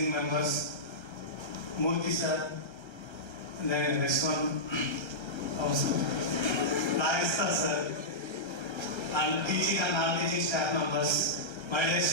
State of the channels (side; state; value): right; late; 1.3 ms